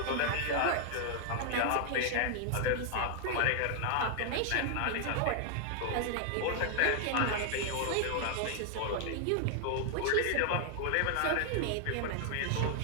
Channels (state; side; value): different; both; correlation 0.00